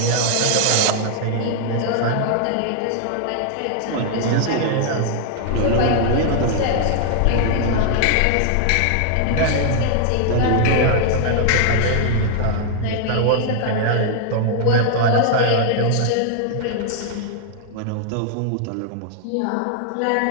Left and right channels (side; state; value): both; different; correlation 0.00